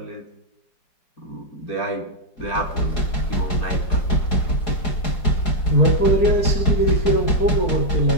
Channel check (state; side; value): late; right; 4.8 ms